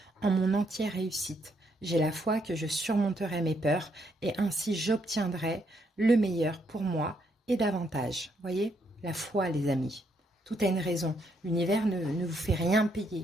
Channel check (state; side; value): normal; both; correlation 0.74